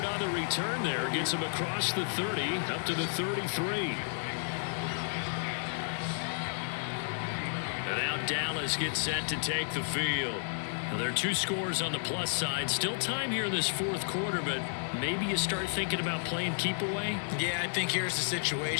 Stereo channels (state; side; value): silent; right; digital silence